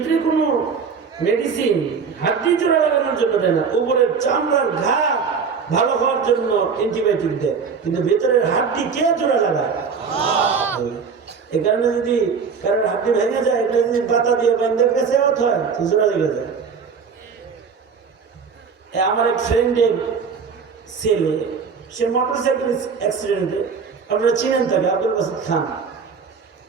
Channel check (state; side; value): quieter; left; 5.8 dB